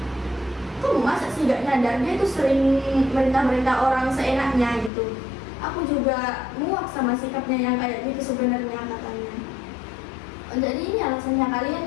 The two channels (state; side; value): drops out; right; at 4.9 s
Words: kamu masa sih gak nyadar dia tuh sering merintah-merintah orang seenaknya gitu. Aku juga muak sama sikapnya yang kayak gitu sebenarnya, katanya. Jadi ini alasannya